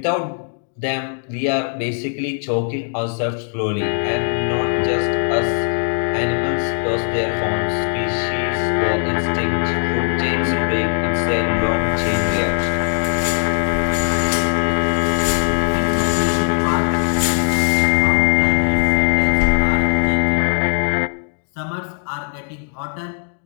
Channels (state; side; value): silent; right; 65 dB below the other